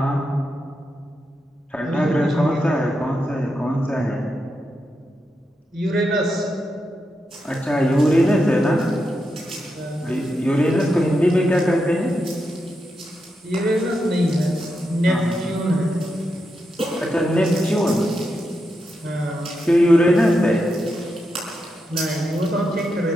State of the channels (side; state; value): both; normal; correlation 0.86